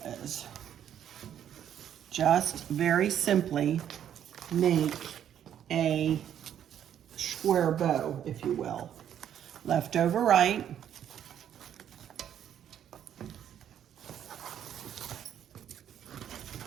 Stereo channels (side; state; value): left; quieter; 9.9 dB